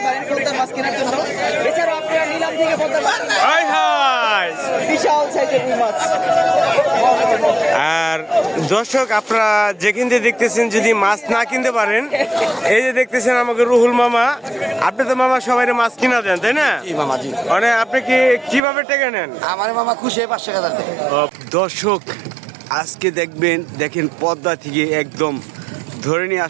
পারেন পদ্মার মাছ কেনার জন্য। এছাড়াও আপনারা নিলাম থেকে পদ্মার মাছ বিশাল সাইজের রুই মাছ। আর দর্শক আপনারা যেখান থেকে দেখতেছেন, যদি মাছ না কিনতে পারেন, এই যে দেখতেছেন আমাকে রুহুল মামা। আপনি তো মামা সবাই মাছ কিনা দেন, তাই না? মানে আপনি কিভাবে টেকে নেন? আমার মামা খুশি হয়ে 5 টাকা দেন। দর্শক আজকে দেখেন পদ্মা থেকে একদম ধরে নিয়ে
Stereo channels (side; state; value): left; drops out; at 18.6 s